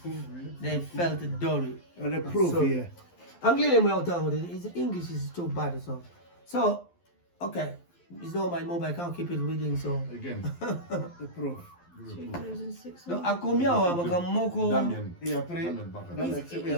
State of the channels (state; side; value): late; right; 12 ms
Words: they felt dory. The proof here. His English is too bad so okay. It's not my mobile, I can't keep it reading so Again. The proof. 2,600. No, a combien Damien. Et après, Damien Baka.